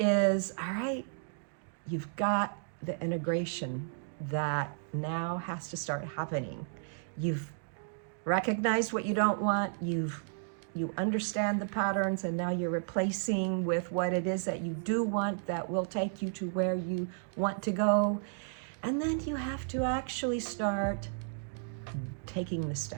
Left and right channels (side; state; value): left; silent; digital silence